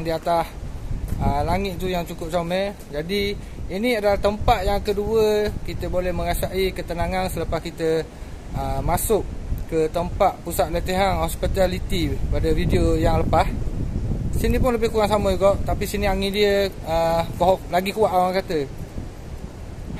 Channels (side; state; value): both; identical; correlation 1.00